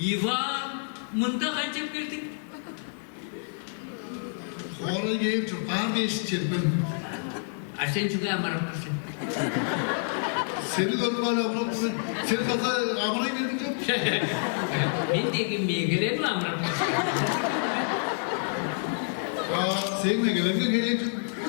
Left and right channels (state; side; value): silent; right; 57 dB below the other